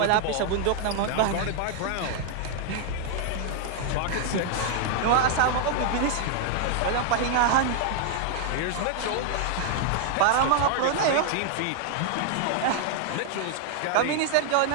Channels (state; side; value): different; both; correlation 0.00